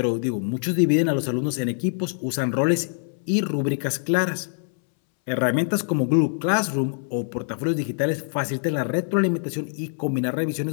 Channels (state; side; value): silent; right; 62 dB below the other